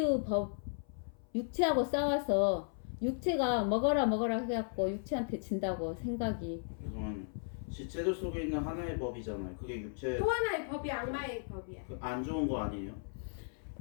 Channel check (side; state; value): right; silent; 54 dB below the other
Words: 법, 육체하고 싸워서 육체가 먹어라 해갖고 육체한테 진다고 생각이. 죄송합니다. 지체들 속에 있는 하나의 법이잖아요. 그게 육체. 또 하나의 법이 악마의 법이야. 안 좋은 거 아니에요?